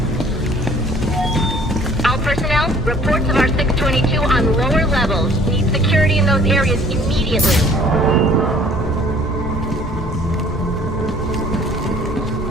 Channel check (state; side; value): normal; both; correlation 0.55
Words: Reports of our 622 on lower levels. Need security in those areas immediately.